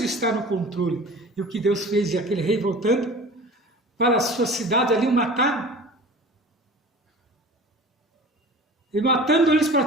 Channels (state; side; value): normal; both; correlation 0.40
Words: está no controle. E o que Deus fez, e aquele rei voltando para a sua cidade ali, o mataram. E matando eles